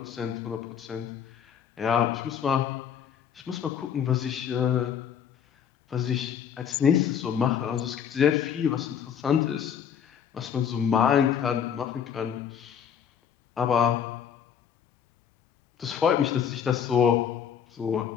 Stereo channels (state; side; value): quieter; right; 8.2 dB